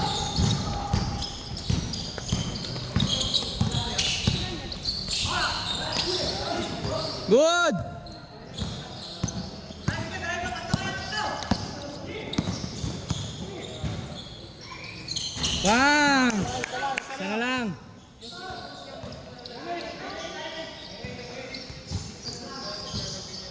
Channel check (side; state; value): both; identical; correlation 1.00